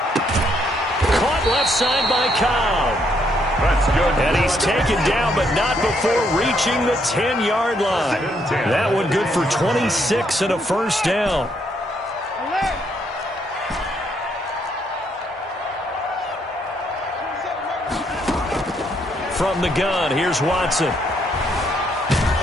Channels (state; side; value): normal; both; correlation 0.73